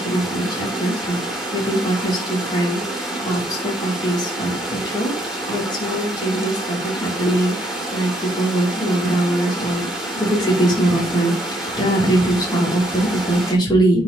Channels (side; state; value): both; normal; correlation 0.71